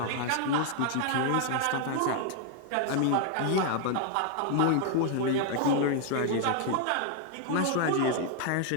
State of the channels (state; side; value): different; both; correlation 0.00